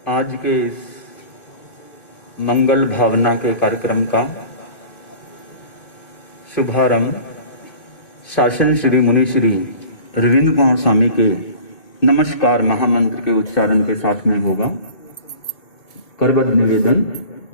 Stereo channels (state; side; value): late; right; 2.2 ms